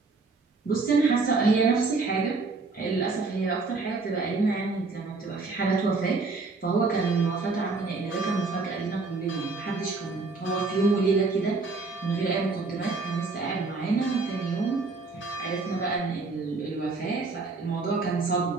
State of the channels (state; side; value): quieter; left; 3.9 dB